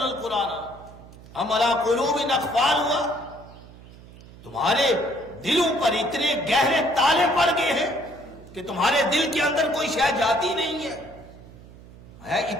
القرآن ام علی قلوب اقفالها، تمہارے دلوں پر اتنے گہرے تالے پڑ گئے ہیں کہ تمہارے دل کے اندر کوئی شے جاتی نہیں ہے،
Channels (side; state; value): right; noise; hum, 20 dB below the sound